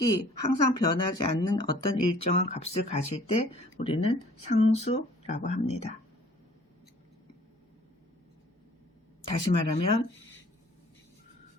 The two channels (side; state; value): both; normal; correlation 0.54